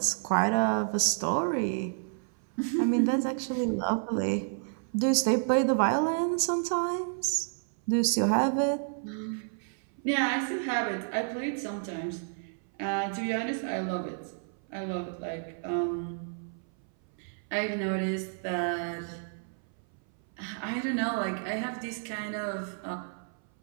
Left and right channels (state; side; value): silent; left; 58 dB below the other